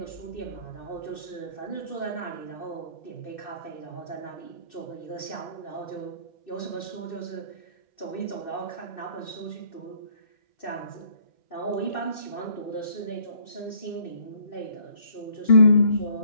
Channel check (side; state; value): right; late; 2.6 ms